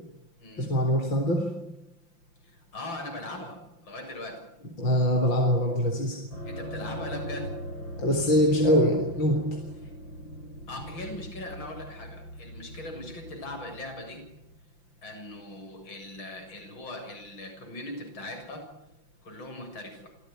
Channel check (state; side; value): late; right; 5.8 ms